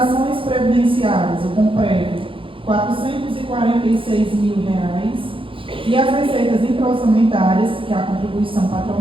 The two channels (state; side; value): late; left; 0.25 ms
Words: previdenciárias, o comprévio, R$446.000. E as receitas intra-orçamentárias, que é a contribuição